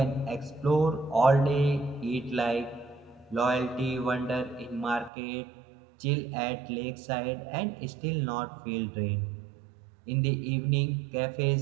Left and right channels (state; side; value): drops out; left; at 5.1 s